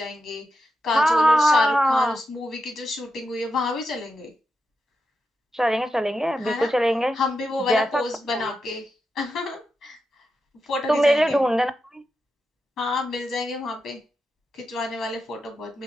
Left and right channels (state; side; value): normal; both; correlation 0.88